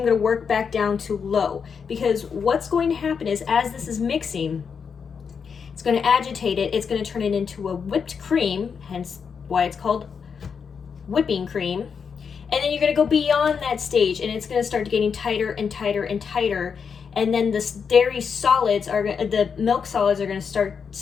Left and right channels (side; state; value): right; quieter; 6.3 dB